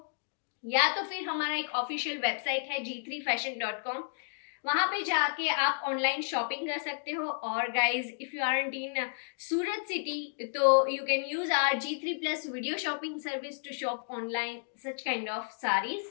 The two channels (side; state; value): right; silent; digital silence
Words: या तो फिर हमारा एक ऑफिशियल वेबसाइट है g3fashion.com, वहां पे जाके आप ऑनलाइन शॉपिंग कर सकते हो। और guys if you are in Surat city तो you can use our G3+ video shopping service to shop online such kind of sarees.